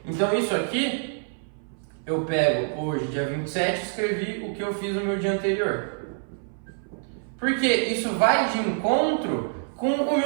Então, isso aqui, eu pego hoje, dia 27, escrevi o que eu fiz no meu dia anterior. Porque isso vai de encontro com o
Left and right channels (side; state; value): left; silent; 58 dB below the other